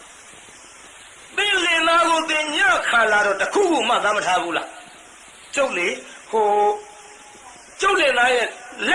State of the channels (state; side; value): identical; both; correlation 1.00